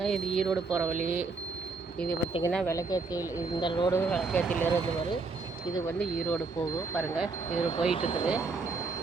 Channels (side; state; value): left; quieter; 4.1 dB